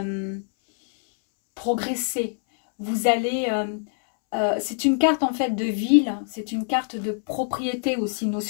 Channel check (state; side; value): silent; right; 62 dB below the other